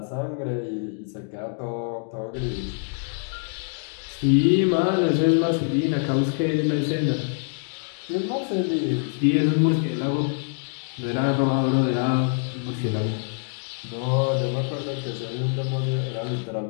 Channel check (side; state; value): right; silent; 59 dB below the other